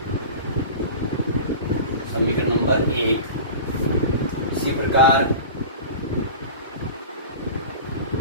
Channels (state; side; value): inverted; both; correlation -0.35